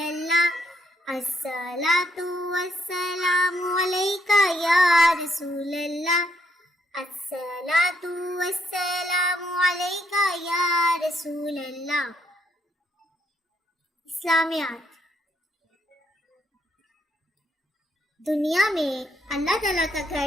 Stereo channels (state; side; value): normal; both; correlation 0.74